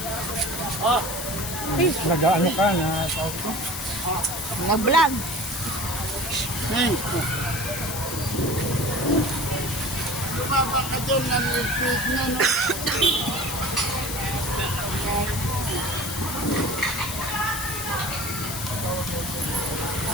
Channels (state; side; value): noise; left; hiss, 6 dB below the sound